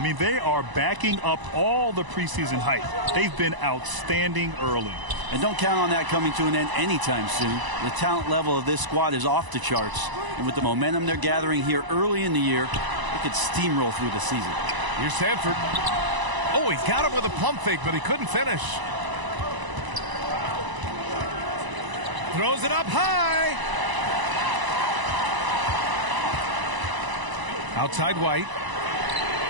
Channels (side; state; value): left; late; 1.0 ms